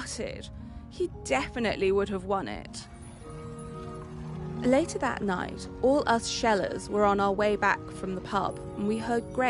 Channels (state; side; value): identical; both; correlation 1.00